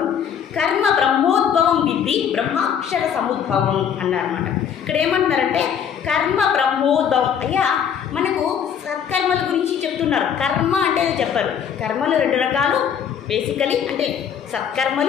కర్మ బ్రహ్మోద్భవం విద్ధి బ్రహ్మాక్షర సముద్భవం అన్నారన్నమాట. ఇక్కడ ఏమంటున్నారంటే కర్మ బ్రహ్మోద్భవం. అయ్యా మనకు సత్కర్మల గురించి చెప్తున్నారు. కర్మ అంటే చెప్పారు. కర్మలు 2 రకాలు బేసికలీ, అంటే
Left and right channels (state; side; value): quieter; right; 8.1 dB